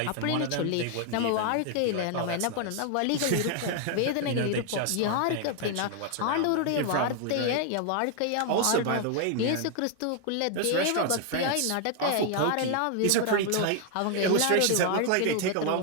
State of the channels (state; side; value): different; both; correlation 0.00